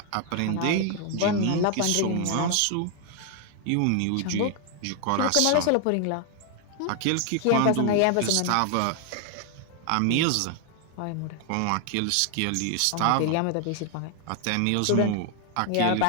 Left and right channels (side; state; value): both; different; correlation 0.00